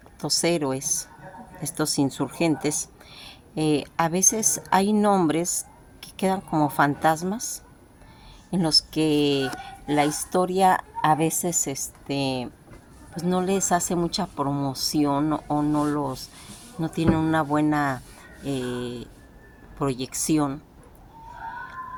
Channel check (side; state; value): both; identical; correlation 1.00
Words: héroes, estos insurgentes. A veces hay nombres que quedan como fantasmas en los que la historia a veces pues no les hace mucha promoción o no tienen una buena proyección,